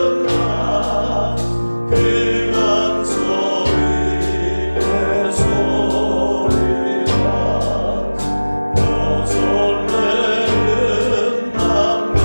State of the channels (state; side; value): inverted; both; correlation -1.00